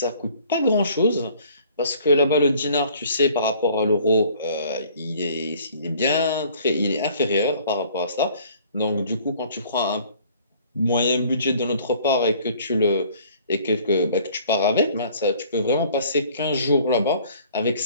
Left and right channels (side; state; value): both; inverted; correlation -0.54